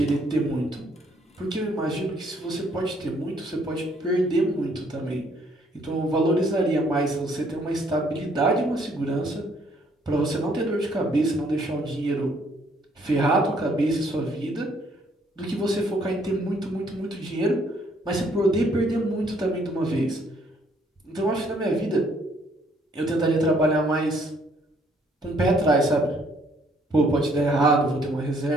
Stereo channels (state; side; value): normal; both; correlation 0.65